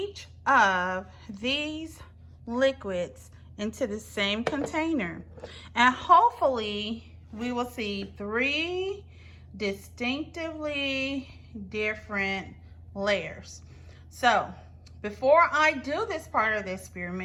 of these liquids into the same container, and hopefully we will see 3 distinctively different layers. So before I do this part of the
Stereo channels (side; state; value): both; identical; correlation 1.00